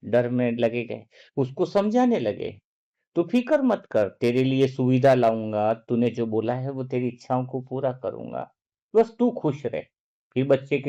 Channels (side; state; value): both; identical; correlation 1.00